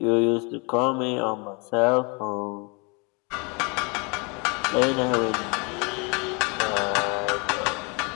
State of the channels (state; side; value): quieter; right; 31.2 dB